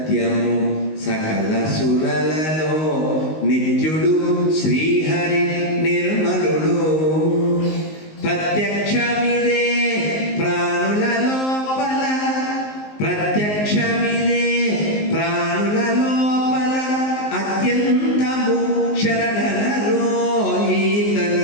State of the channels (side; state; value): right; late; 19 ms